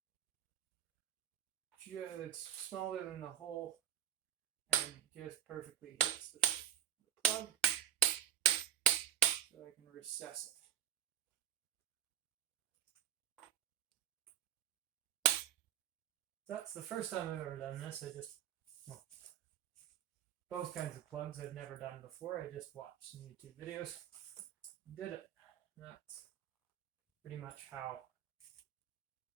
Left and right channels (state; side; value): quieter; left; 10.2 dB